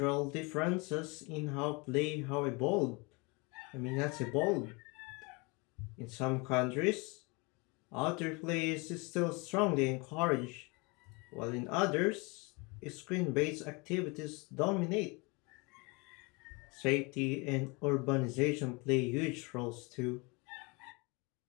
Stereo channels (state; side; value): quieter; right; 28.6 dB